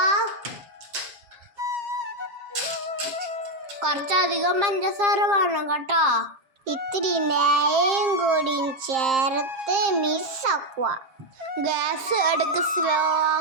കുറച്ചധികം പഞ്ചസാര വേണം കേട്ടോ. ഇത്തിരി നെയ്യും കൂടി ചേർത്ത് മിക്സ് ആക്കുക. ഗ്യാസ് ഇടയ്ക്ക് സ്ലോ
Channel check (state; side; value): late; left; 7.3 ms